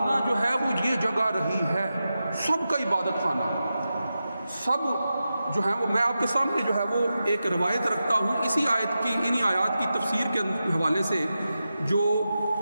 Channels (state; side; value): inverted; both; correlation -0.91